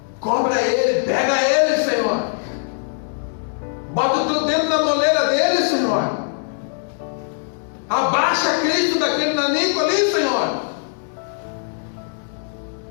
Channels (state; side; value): silent; right; digital silence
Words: Cobra ele, pega ele, Senhor. Bota o teu dedo na moleira dele, Senhor. Abaixa Cristo daquele nanico ali, Senhor.